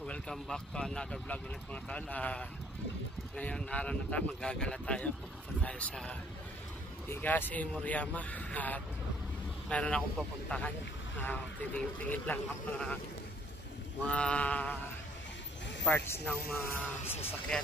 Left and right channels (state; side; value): normal; both; correlation 0.59